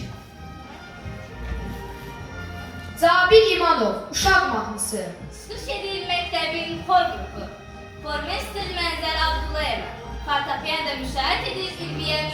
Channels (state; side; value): identical; both; correlation 1.00